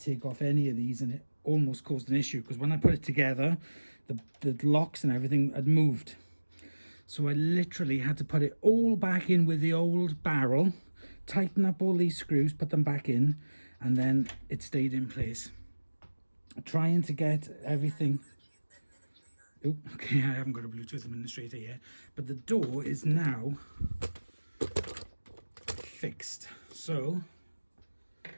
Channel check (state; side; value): inverted; both; correlation -1.00